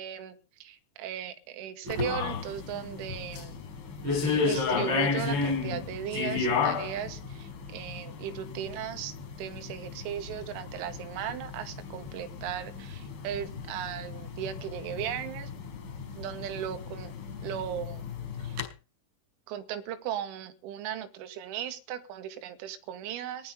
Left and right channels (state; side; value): late; left; 21 ms